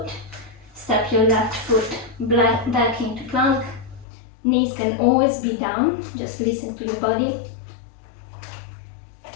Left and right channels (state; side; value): drops out; right; at 4.0 s